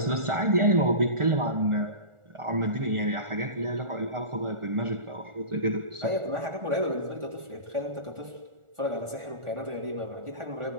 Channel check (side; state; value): left; late; 1.4 ms